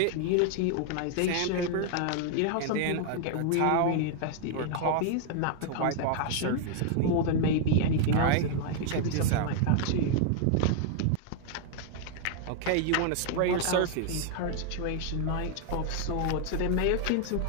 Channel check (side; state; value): both; different; correlation 0.00